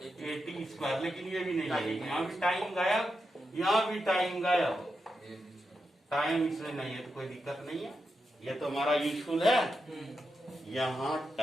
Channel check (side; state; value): both; normal; correlation 0.87